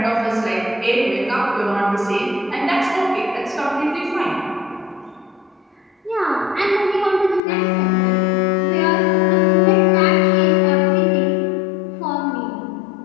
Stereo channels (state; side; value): drops out; right; at 7.4 s